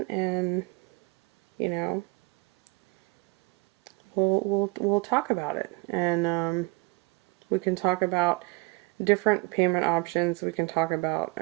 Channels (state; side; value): quieter; left; 26.5 dB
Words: and you know, we'll talk about it, and we can talk about different payment options. We can talk about